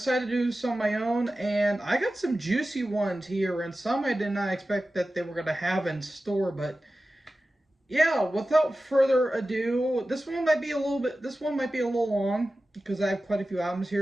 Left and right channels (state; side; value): normal; both; correlation 0.95